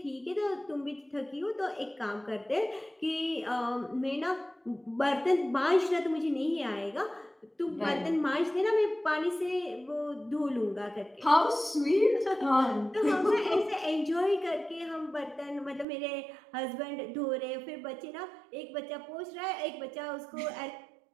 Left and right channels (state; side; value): drops out; left; at 15.9 s